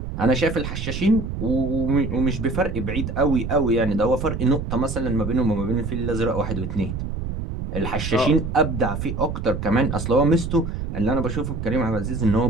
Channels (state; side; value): noise; right; rumble, 5 dB below the sound